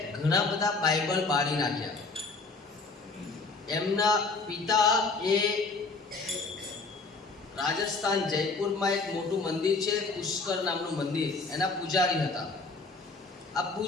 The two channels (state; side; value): quieter; right; 3.9 dB